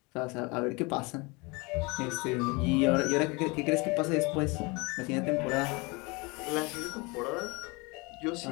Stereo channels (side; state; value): right; quieter; 27.2 dB